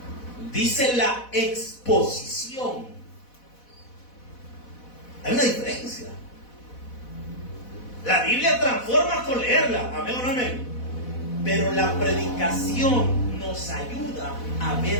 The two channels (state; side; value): late; right; 4.1 ms